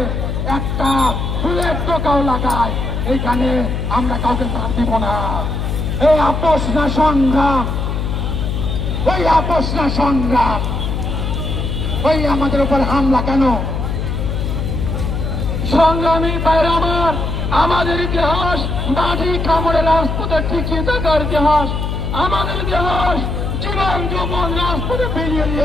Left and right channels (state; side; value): noise; left; hum, 2 dB below the sound